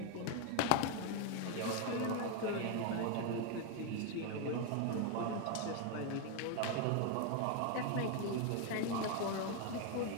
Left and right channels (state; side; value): different; both; correlation 0.01